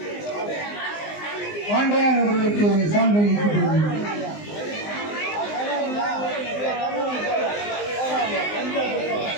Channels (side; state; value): right; late; 19 ms